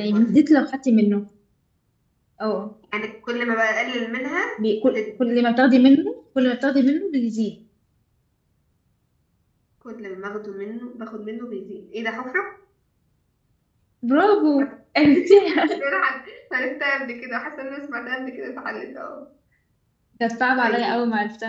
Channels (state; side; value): identical; both; correlation 1.00